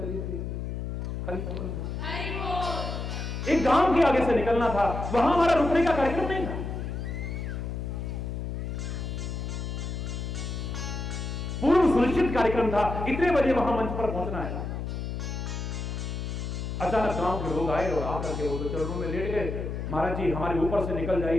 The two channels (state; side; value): noise; left; hum, 4 dB below the sound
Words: थी। एक गांव के आगे से निकलना था, वहां हमारा रुकने का कार्यक्रम नहीं था। पूर्व सुनिश्चित कार्यक्रम था, इतने बजे वहां मंच पर पहुंचना है। अचानक गांव के लोग आए और आकर के वो तो चरणों में लेट गए। महाराज जी हमारे ऊपर से निकल